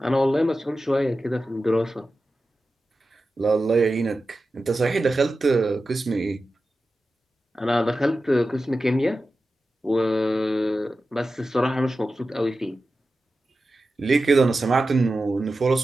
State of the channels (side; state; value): both; normal; correlation 0.93